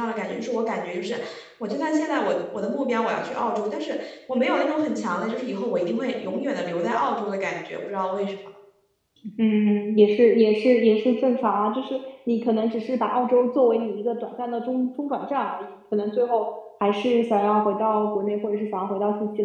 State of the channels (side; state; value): both; identical; correlation 1.00